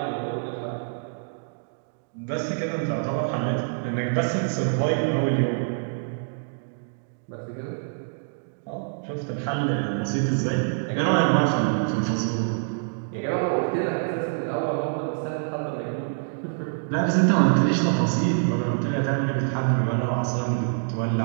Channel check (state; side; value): silent; left; digital silence